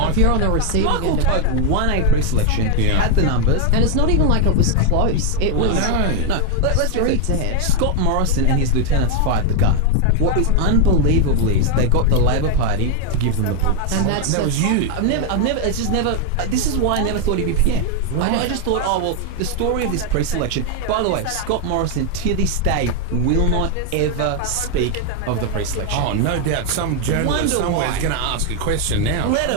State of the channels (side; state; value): both; different; correlation 0.01